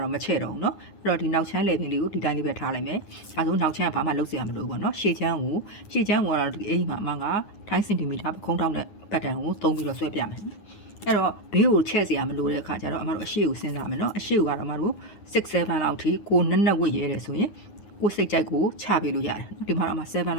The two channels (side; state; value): right; late; 9.7 ms